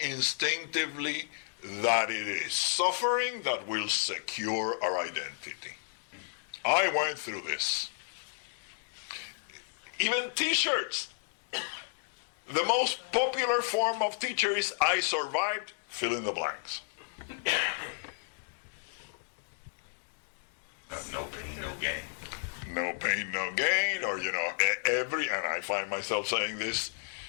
that it is suffering that will secure our identity. I went through this. Even t-shirts. The most popular form of t-shirt is I survived, fill in the blanks. No pain, no gain. no pain, no gain, or, and I find myself saying this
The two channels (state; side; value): silent; right; 56 dB below the other